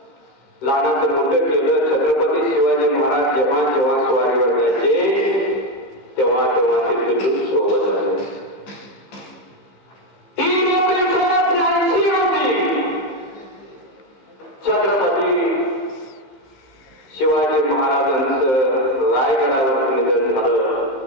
लहानाचं मोठं केलं. छत्रपती शिवाजी महाराज जेव्हा जेव्हा स्वारीवर जायचे तेव्हा तेव्हा ते पिलू सोबत आले. छत्रपती शिवाजी महाराजांचं रायगडावर निधन झालं.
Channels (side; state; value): right; late; 15 ms